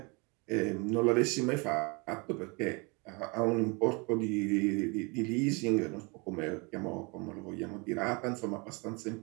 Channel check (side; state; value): left; quieter; 29.6 dB